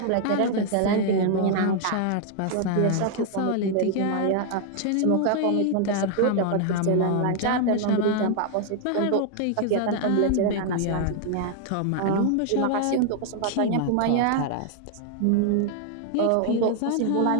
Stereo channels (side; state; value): both; different; correlation 0.00